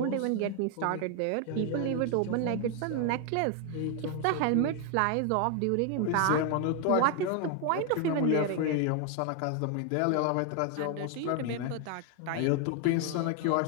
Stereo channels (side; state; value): both; different; correlation 0.01